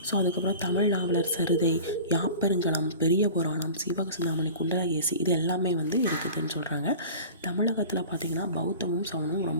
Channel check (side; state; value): both; inverted; correlation -0.38